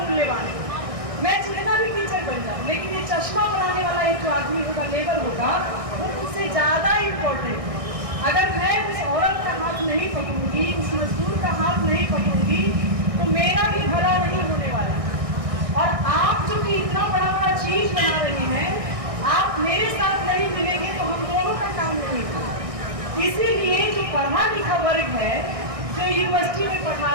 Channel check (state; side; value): late; left; 1.6 ms